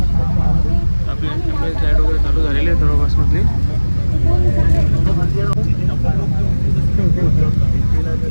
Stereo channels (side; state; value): both; inverted; correlation -1.00